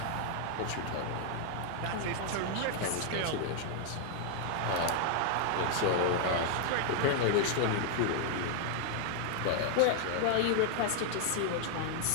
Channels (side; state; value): both; different; correlation 0.00